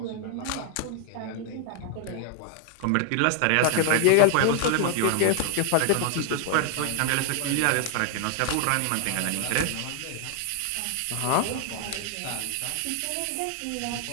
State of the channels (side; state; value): both; different; correlation 0.00